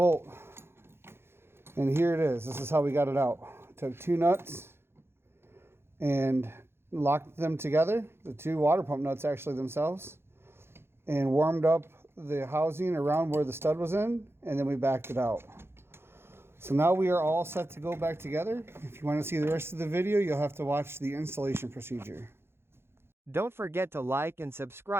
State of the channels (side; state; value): left; late; 0.12 ms